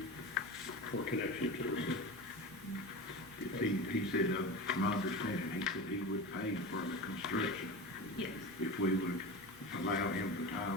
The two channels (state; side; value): normal; both; correlation 0.27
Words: for connection to the city. He said, from my understanding, he said he would pay for the construction. Yes. If we would allow him to tie